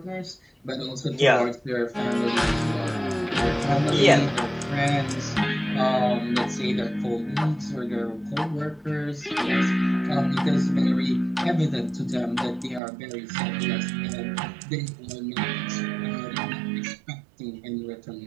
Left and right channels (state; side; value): drops out; left; at 12.8 s